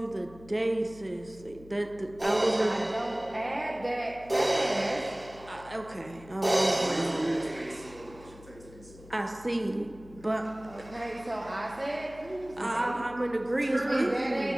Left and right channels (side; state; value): left; noise; hum, 20 dB below the sound